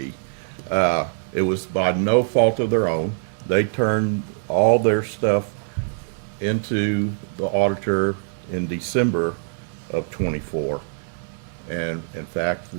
It was by no fault of their own. They turned all their stuff into the auditor in December of '24. And in fact,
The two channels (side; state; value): left; silent; digital silence